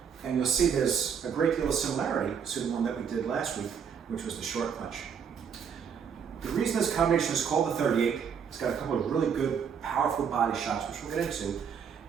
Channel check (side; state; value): left; quieter; 7.2 dB